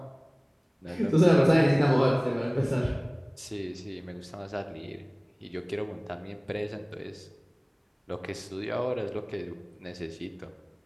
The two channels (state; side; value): identical; both; correlation 1.00